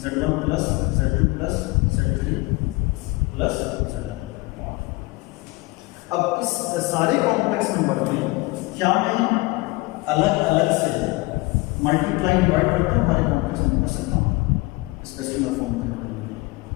Z1 plus Z2 plus Z3 plus Zn। अब इस सारे कॉम्प्लेक्स नंबर में क्या मैं अलग अलग से मल्टीप्लाई डिवाइड करके हमारे कॉम्प्लेक्स नंबर कर सकता हूँ इसका स्कीमा फॉर्म करने के लिए।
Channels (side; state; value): right; quieter; 23.4 dB